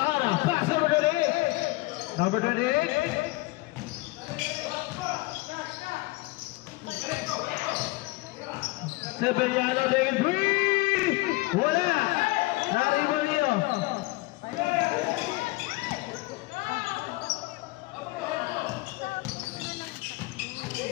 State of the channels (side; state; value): right; quieter; 21.9 dB